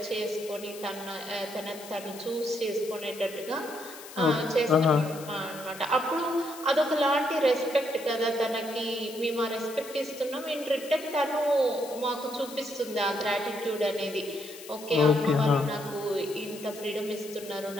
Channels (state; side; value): noise; left; hiss, 15 dB below the sound